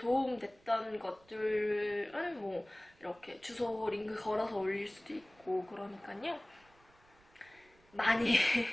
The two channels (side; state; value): right; noise; rumble, 30 dB below the sound